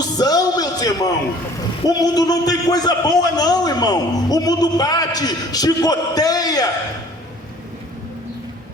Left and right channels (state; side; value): normal; both; correlation 0.52